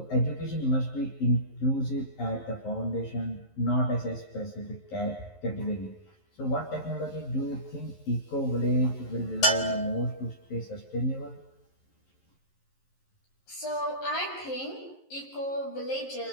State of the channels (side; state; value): right; late; 11 ms